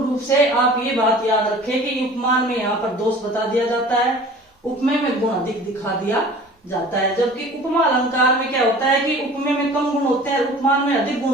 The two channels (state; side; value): normal; both; correlation 0.44